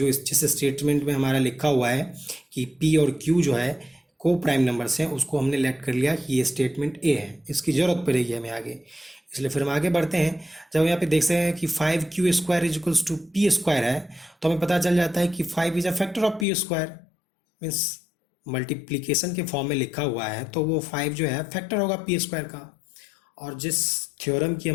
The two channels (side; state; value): right; drops out; at 16.4 s